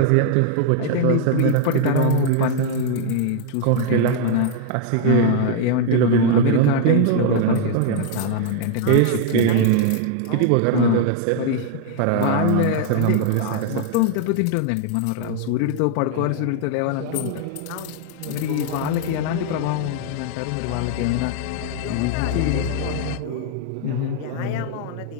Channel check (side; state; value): both; different; correlation 0.00